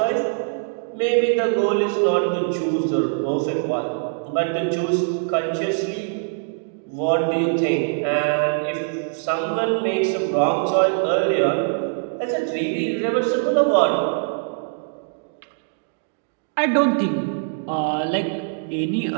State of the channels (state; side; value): silent; left; digital silence